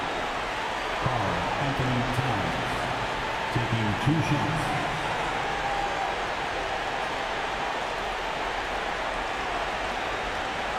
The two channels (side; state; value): both; identical; correlation 1.00